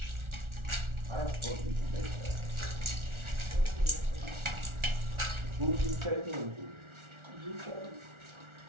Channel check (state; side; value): late; left; 1.4 ms